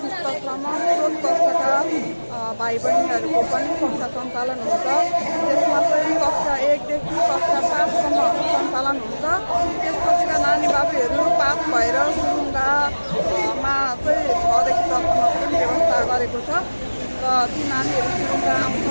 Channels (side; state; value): both; inverted; correlation -1.00